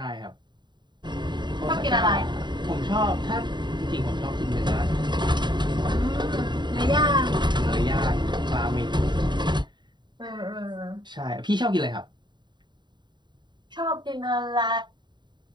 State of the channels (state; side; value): late; left; 0.22 ms